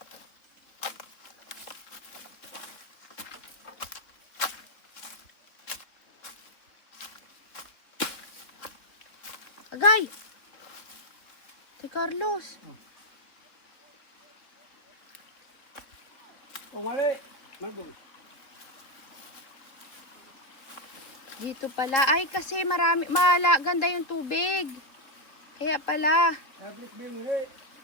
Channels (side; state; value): right; late; 3.5 ms